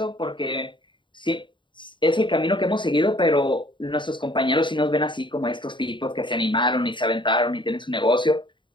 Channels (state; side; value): late; right; 0.23 ms